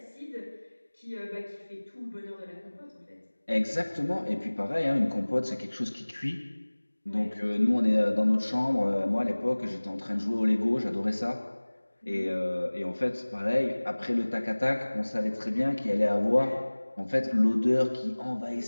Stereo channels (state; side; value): inverted; both; correlation -1.00